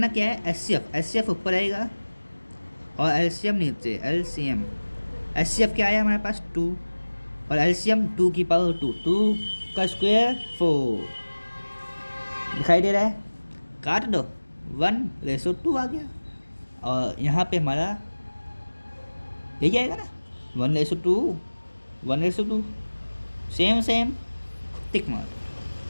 क्या है? एचसीएफ ऊपर आएगा और एलसीएम नीचे। एलसीएम एचसीएफ क्या आया हमारे पास? 2 और एलसीएम 2 की पावर 2। 2 का स्क्वायर 4। दिखाई दे रहा है? काट दो, 1:2 आ गया। और यहाँ पे हमारा यही आएगा ना, 1:2, 1:2। सेम टिक मार।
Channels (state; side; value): inverted; both; correlation -1.00